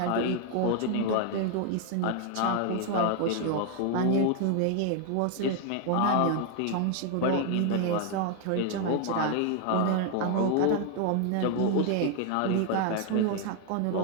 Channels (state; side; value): different; both; correlation 0.00